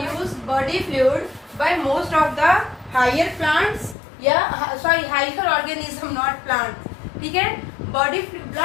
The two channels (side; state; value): right; drops out; at 4.0 s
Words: body fluid by most of the higher plants या हायर ऑर्गेनिज्म, नॉट प्लांट। ठीक है, बॉडी